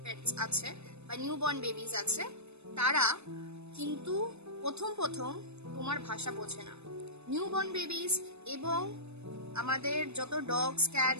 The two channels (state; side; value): late; left; 0.81 ms